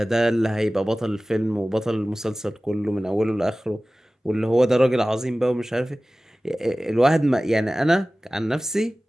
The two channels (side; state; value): both; normal; correlation 0.97